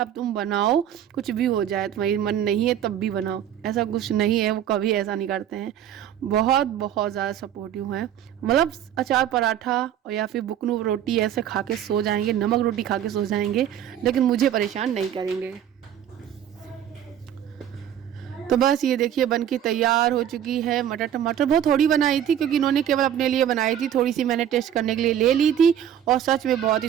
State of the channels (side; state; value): left; quieter; 10.3 dB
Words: तुम बनाओ, कुछ भी हो जाए, तुम्हारी मन नहीं है तब भी बनाओ, ऐसा कुछ नहीं है, वो कभी ऐसा नहीं करते हैं। बहुत बहुत ज़्यादा सपोर्टिव हैं, मतलब अचार पराठा और या फिर बुकनू रोटी ऐसे खा के सो जाएंगे, नमक रोटी खा के सो जाएंगे, लेकिन मुझे परेशान नहीं करेंगे। तो बस ये देखिए बन के तैयार हो चुकी है। मटर टमाटर बहुत थोड़ी बनाई थी, क्योंकि इन्होंने केवल अपने लिए बनाई थी, थोड़ी सी मैंने टेस्ट करने के लिए ले ली थी, और सच में बहुत